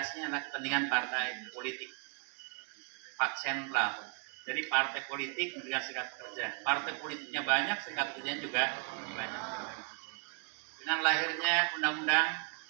adalah kepentingan partai politik. Pak sentral. Jadi partai politik mendirikan serikat pekerja. Partai politiknya banyak, serikat pekerjanya juga banyak. Dengan lahirnya undang-undang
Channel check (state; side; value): quieter; left; 36.7 dB